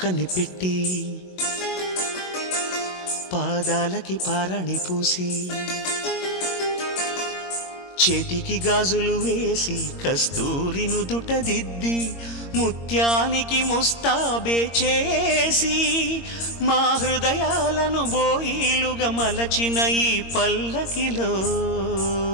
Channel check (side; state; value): right; late; 22 ms